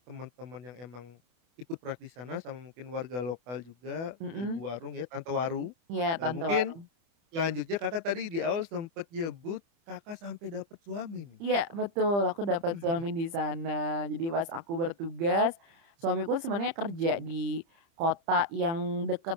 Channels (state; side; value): late; left; 30 ms